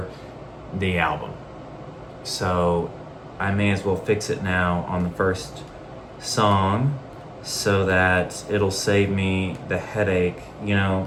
the album. So I may as well fix it now on the first song so that it'll save me the headache,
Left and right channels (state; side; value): identical; both; correlation 1.00